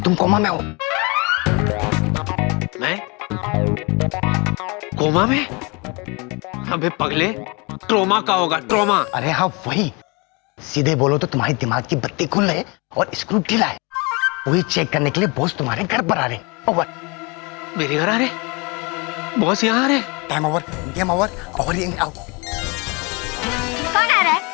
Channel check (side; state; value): right; quieter; 28.9 dB